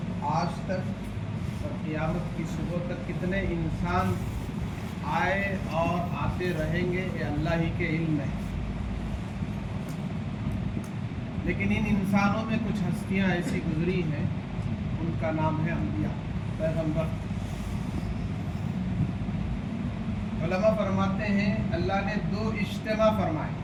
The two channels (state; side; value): identical; both; correlation 1.00